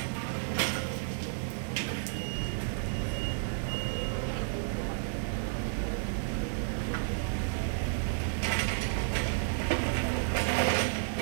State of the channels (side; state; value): left; silent; digital silence